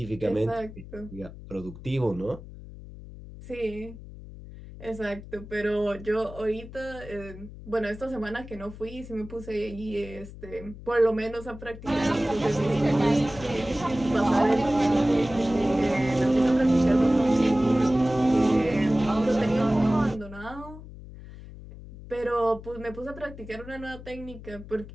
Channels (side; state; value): left; noise; hum, 15 dB below the sound